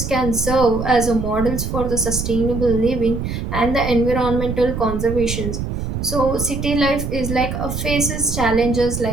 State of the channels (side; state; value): right; noise; rumble, 4 dB below the sound